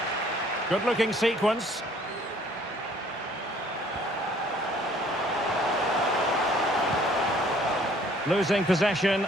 Good-looking sequence. Losing possession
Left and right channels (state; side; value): normal; both; correlation 0.58